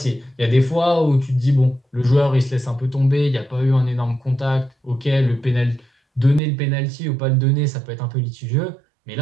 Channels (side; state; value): left; drops out; at 6.4 s